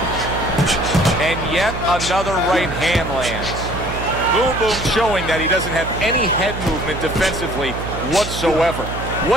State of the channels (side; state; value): right; noise; hum, 7 dB below the sound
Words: And yet another right hand lands. Boom Boom showing that he doesn't have any head movement defensively whatsoever.